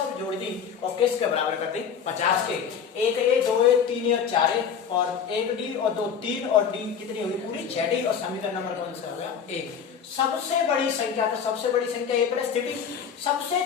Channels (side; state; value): right; quieter; 7.3 dB